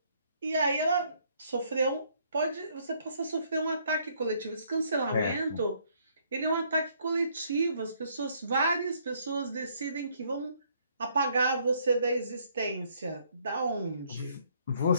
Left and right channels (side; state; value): both; inverted; correlation -0.67